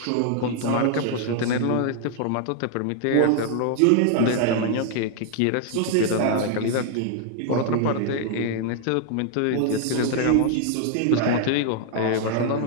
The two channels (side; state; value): both; different; correlation 0.00